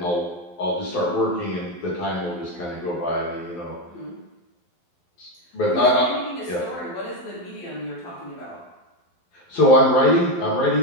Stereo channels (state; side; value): late; right; 12 ms